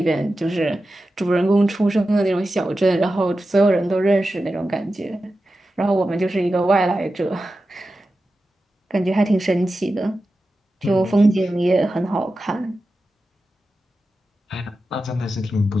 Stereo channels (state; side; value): normal; both; correlation 0.92